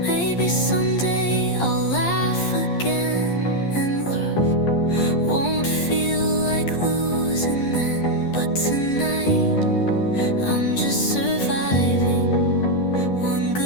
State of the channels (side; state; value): right; late; 11 ms